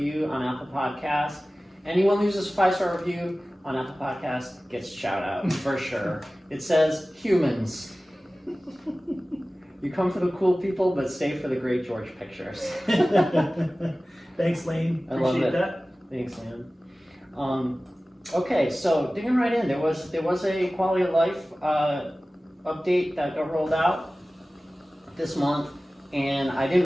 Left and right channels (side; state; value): both; normal; correlation 0.97